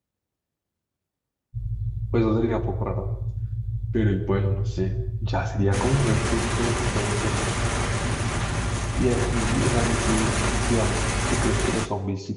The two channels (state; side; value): identical; both; correlation 1.00